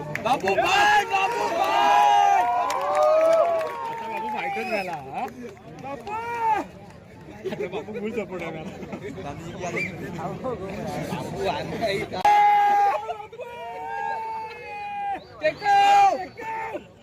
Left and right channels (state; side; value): identical; both; correlation 1.00